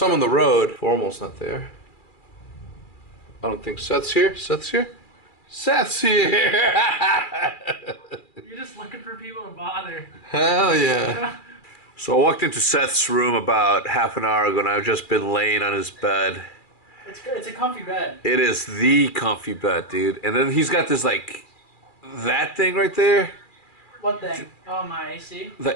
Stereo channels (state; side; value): late; right; 2.4 ms